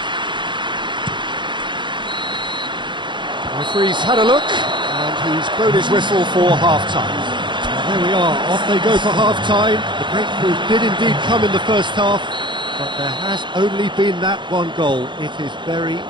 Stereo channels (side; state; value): left; late; 0.23 ms